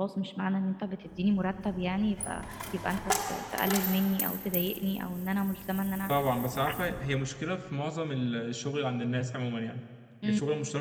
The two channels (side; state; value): both; identical; correlation 1.00